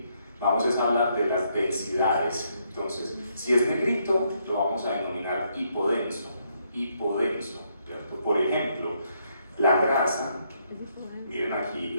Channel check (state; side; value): inverted; both; correlation -0.75